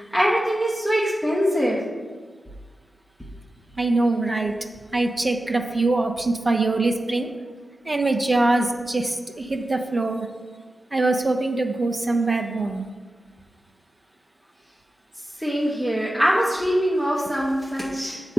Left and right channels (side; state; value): both; normal; correlation 0.93